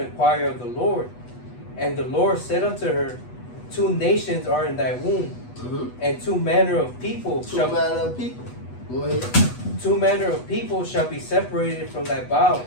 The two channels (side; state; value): right; late; 8.2 ms